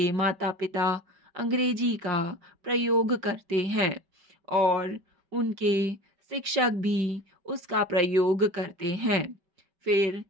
माता पिता अंग्रेजी का प्रयोग करते हैं और उनके शिक्षक भी उसका प्रयोग करते हैं। फिर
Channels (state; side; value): late; left; 5.2 ms